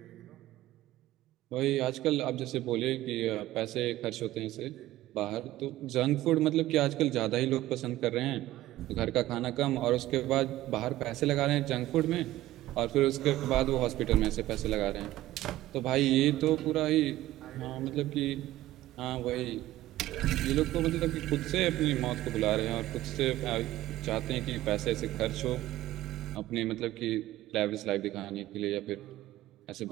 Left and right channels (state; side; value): quieter; left; 15.6 dB